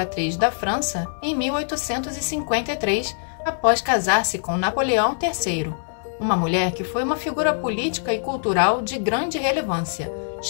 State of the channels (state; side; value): silent; right; digital silence